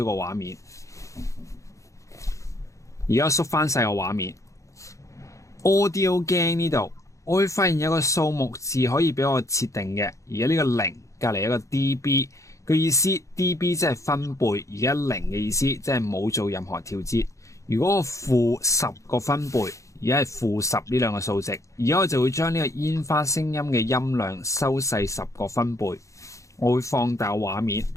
個畫面，而家縮翻細個畫面。Audio Gain 呢度，我會發現有個數目字可以俾我設定嘅。而家呢個0隔籬有個 dB 嘅意思 ，dB 即係分貝，而家0嘅意思即係冇做任何調節。如果我-10個分貝，而家係-10呢兩個數值，而家我就會將呢個煙花聲音嘅音量收細10個分貝。我會放大畫面，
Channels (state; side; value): late; right; 0.15 ms